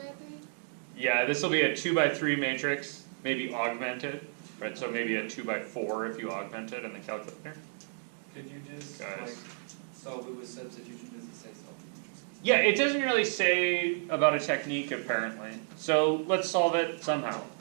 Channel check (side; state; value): left; silent; 57 dB below the other